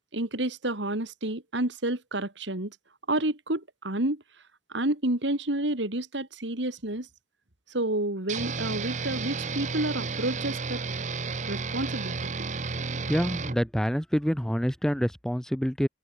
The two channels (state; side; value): normal; both; correlation 0.46